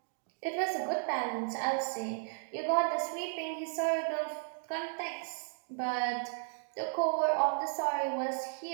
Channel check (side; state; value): left; silent; digital silence